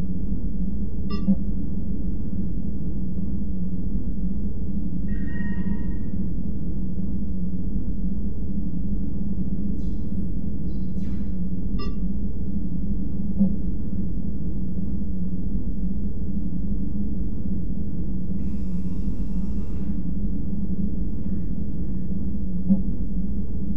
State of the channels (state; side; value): identical; both; correlation 1.00